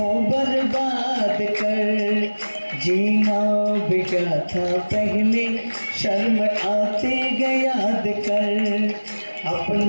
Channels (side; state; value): both; inverted; correlation -1.00